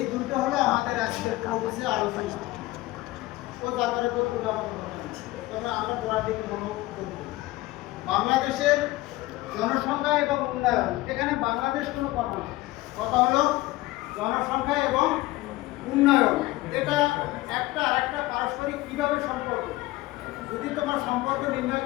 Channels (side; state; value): right; quieter; 18.7 dB